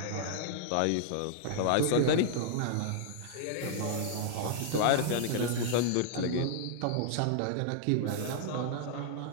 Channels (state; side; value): different; both; correlation -0.01